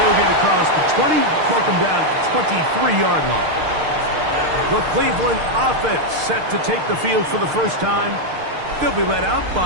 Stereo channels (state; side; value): late; left; 6.5 ms